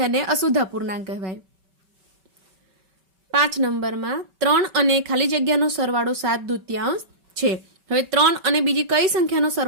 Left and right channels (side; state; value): left; late; 5.2 ms